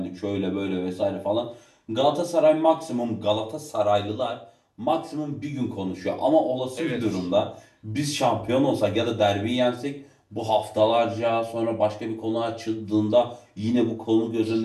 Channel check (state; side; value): identical; both; correlation 1.00